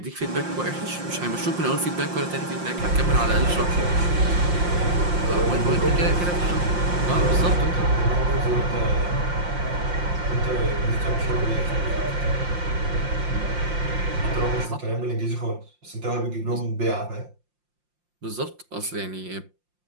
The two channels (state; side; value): late; left; 5.7 ms